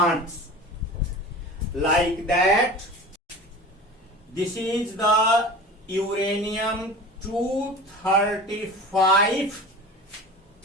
like that. This is the uranium 235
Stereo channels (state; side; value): normal; both; correlation 0.36